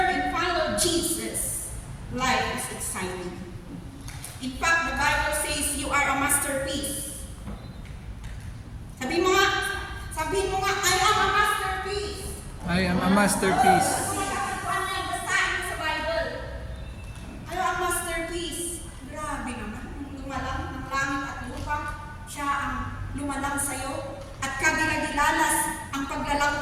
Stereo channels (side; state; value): both; identical; correlation 1.00